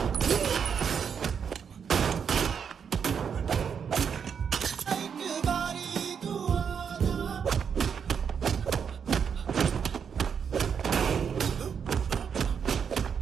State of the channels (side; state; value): left; quieter; 7.1 dB